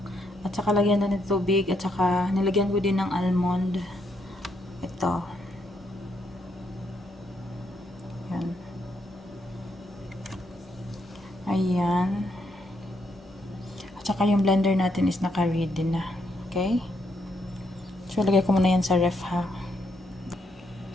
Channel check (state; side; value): normal; both; correlation 0.76